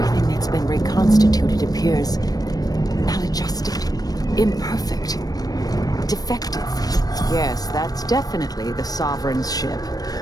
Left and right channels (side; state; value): right; late; 0.19 ms